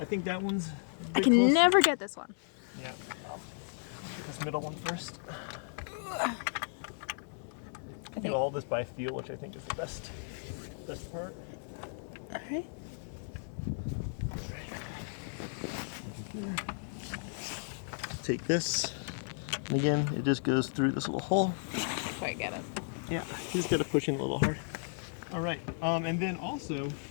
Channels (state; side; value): silent; right; digital silence